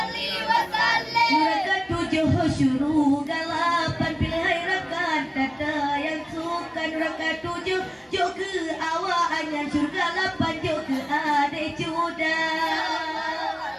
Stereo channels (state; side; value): identical; both; correlation 1.00